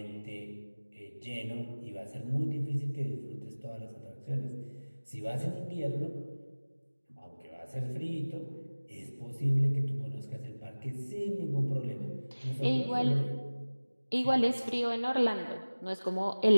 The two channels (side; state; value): both; inverted; correlation -1.00